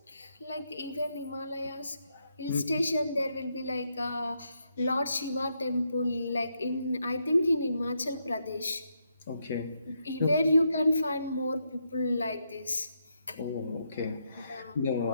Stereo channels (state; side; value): inverted; both; correlation -0.80